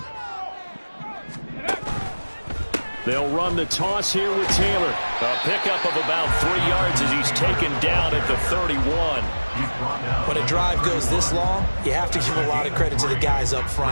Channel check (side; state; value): both; inverted; correlation -1.00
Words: They'll run the toss here with Taylor. A pickup of about 3 yards as he's taken down at the 31. When a drive goes this long, you have to give a lot of credit to the guys up